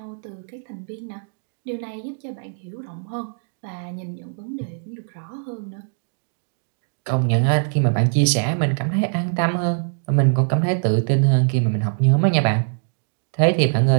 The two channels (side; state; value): left; silent; digital silence